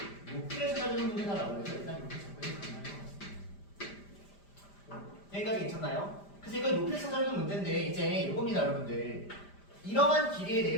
높이를 찾아주는 문제다라고 해서 일단 이렇게 잡고 가능할 것 같습니다. 여기까지 괜찮나요? 그래서 이걸 높이를 찾아주는 문제인데 이제 이겁니다, 여러분들. 이러한 길이에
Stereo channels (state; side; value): late; right; 5.0 ms